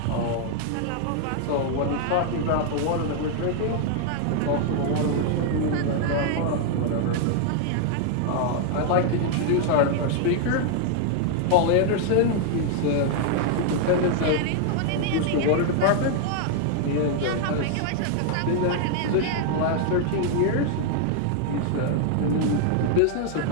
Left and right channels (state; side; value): different; both; correlation 0.00